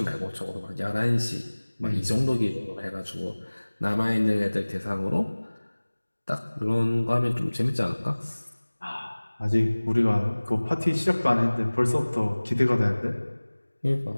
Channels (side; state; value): both; inverted; correlation -1.00